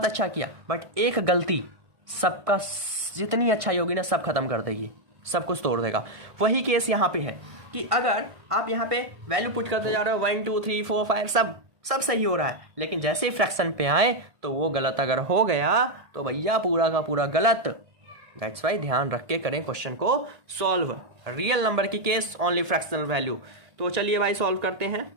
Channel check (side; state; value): left; late; 1.7 ms